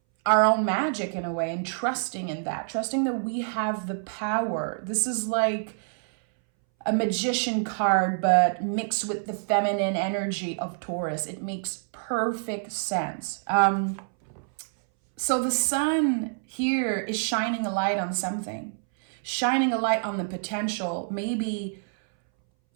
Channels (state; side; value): silent; left; 60 dB below the other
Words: our own magic in a way, and trusting in that, trusting that we have the power. This is like a magician card, but mixed with the feminine energy of Taurus. It makes perfect sense. So the sun here is shining a light on something, shining a light on the potential, maybe